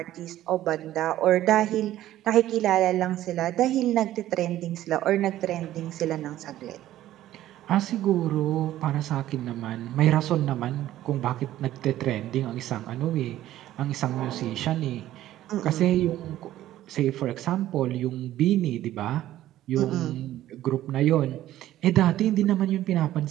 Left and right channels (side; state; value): left; quieter; 13.7 dB